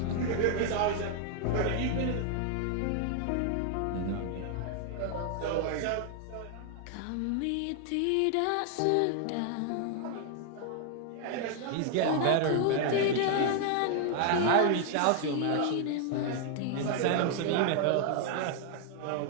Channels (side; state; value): both; different; correlation 0.00